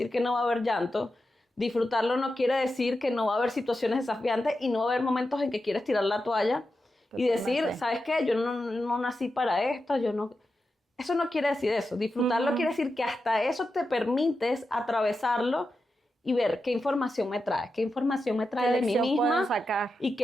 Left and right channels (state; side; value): normal; both; correlation 0.89